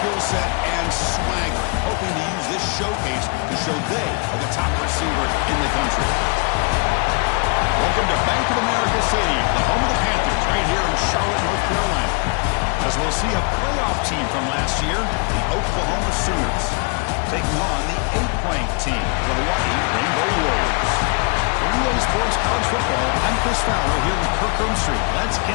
set and swagger, hoping to use this showcase to show they are the top receiver in the country. Welcome to Bank of America Stadium, the home of the Panthers, right here in Charlotte, North Carolina. As we'll see a playoff team from last year, the Oklahoma Sooners, taking on the 8th-ranked team, the Hawaii Rainbow Warriors. For EA Sports College Football, I'm Chris Fowler here with Kirk Street. Let's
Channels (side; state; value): right; quieter; 35.9 dB